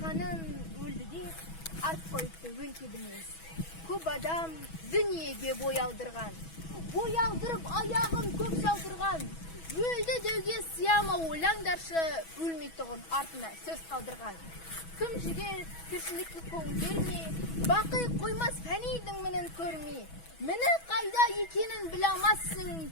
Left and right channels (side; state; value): right; late; 6.1 ms